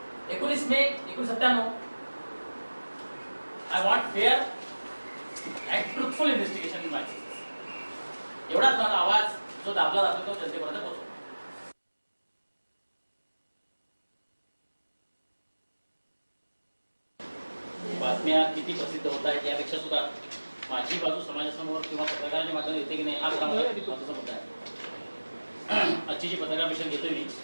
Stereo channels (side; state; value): both; inverted; correlation -1.00